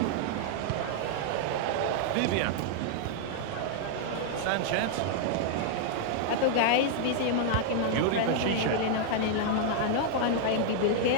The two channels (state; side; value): different; both; correlation 0.00